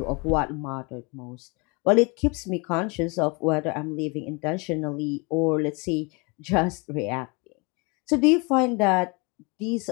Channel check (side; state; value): right; quieter; 29.9 dB